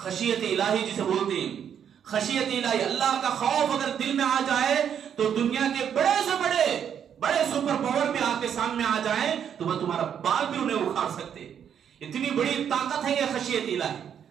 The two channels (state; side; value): quieter; left; 8.5 dB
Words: الہی جسے بولتے ہیں، خشیت الہی، اللہ کا خوف اگر دل میں آ جائے تو دنیا کے بڑے سے بڑے سپر پاور بھی آپ کے سامنے آ جائیں تو وہ تمہارا بال بھی انہیں اکھاڑ سکتے. اتنی بڑی طاقت ہے یہ خشیت الہی.